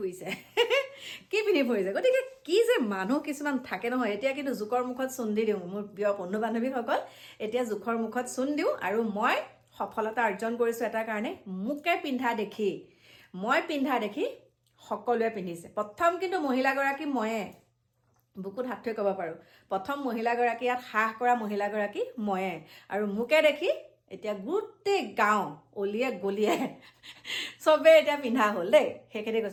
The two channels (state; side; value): identical; both; correlation 1.00